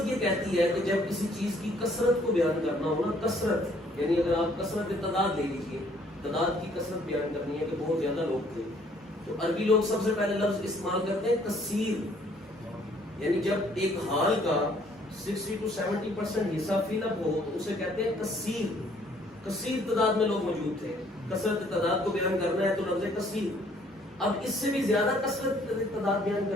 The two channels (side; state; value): both; normal; correlation 0.62